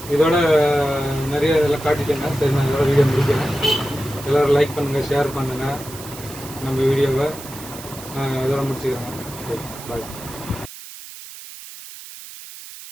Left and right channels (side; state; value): right; noise; hiss, 14 dB below the sound